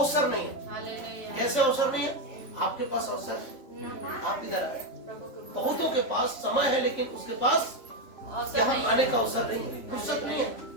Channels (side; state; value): right; late; 3.5 ms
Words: नहीं है। कैसे अवसर नहीं है? आपके पास अवसर है, आप इधर आए। बहुतों के पास समय है, लेकिन उसके पास यहाँ आने का अवसर नहीं है, फुर्सत नहीं है,